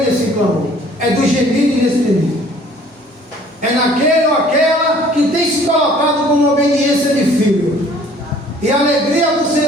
nesse clamor. É do gemido inexprimível. É naquele ou aquela que tem se colocado como obediência de filho. E a alegria do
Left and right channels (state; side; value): normal; both; correlation 0.54